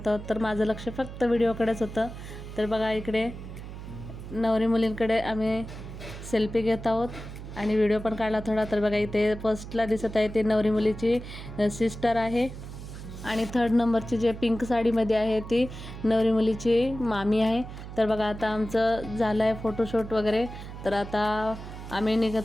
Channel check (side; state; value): right; noise; hum, 11 dB below the sound